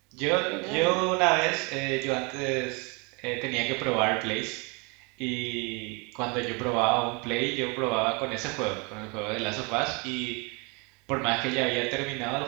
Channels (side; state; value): left; quieter; 30.4 dB